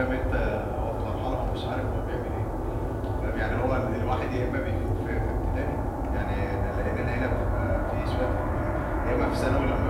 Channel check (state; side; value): identical; both; correlation 1.00